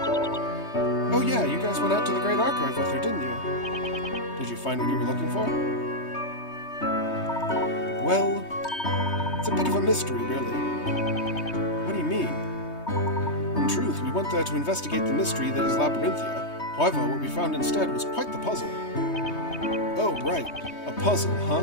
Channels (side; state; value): right; late; 3.2 ms